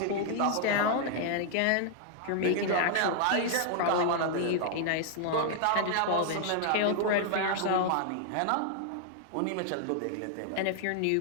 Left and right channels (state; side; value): different; both; correlation 0.00